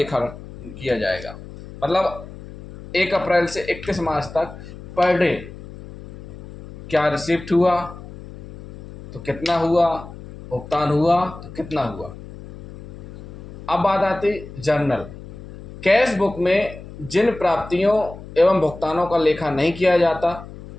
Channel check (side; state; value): left; noise; hum, 15 dB below the sound